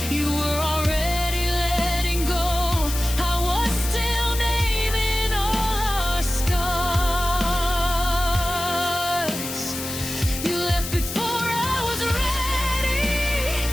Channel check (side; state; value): left; noise; hiss, 7 dB below the sound